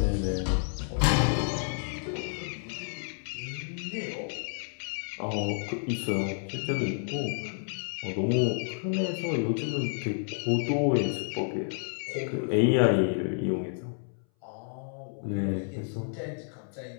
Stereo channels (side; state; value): right; silent; 58 dB below the other